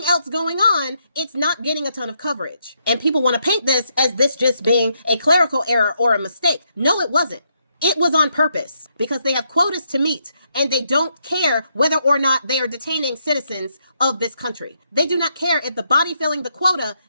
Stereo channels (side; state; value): both; inverted; correlation -0.77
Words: else going on, it's not getting a ton of coverage. And people want to paint this as this just being a clerical error or a mistake. No, it wasn't. It was on purpose because they have quotas to meet and they don't care whether or not they are detaining citizens of this country. They do not care if the body filling the quota